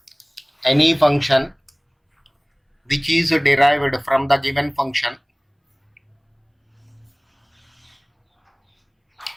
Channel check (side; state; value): both; identical; correlation 1.00